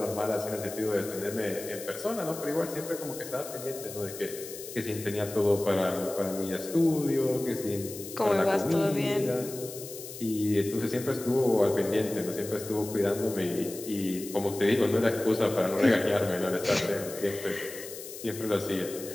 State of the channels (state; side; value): noise; left; hiss, 12 dB below the sound